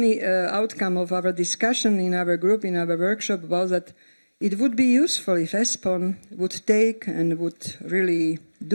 outcome of our discussion in our group, in our workshop, was that it would be useful if ESPON would take and would really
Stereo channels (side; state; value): both; inverted; correlation -1.00